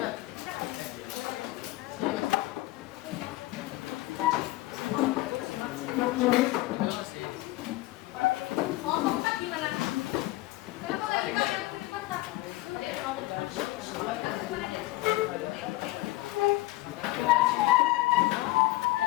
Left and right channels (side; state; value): right; quieter; 18.7 dB